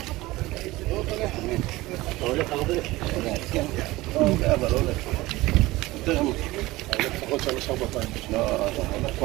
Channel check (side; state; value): left; quieter; 19.3 dB